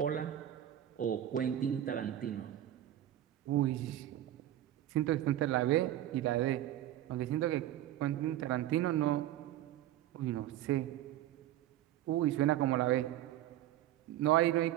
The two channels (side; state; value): left; quieter; 12.9 dB